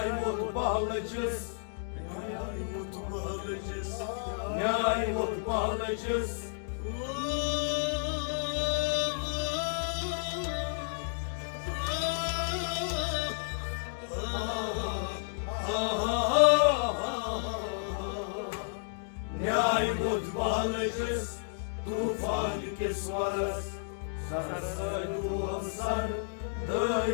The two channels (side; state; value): right; silent; digital silence